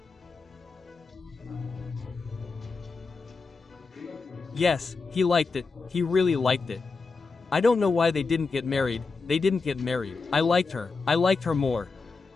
Yes, he liked it, he really liked it. I don't know why they didn't get married, I liked her more.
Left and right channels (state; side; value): quieter; right; 4.4 dB